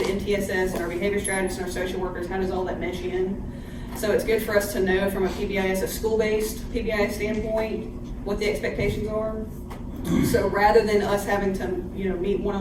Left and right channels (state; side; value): identical; both; correlation 1.00